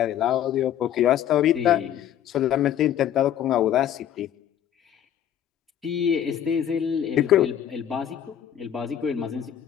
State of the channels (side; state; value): right; quieter; 10.3 dB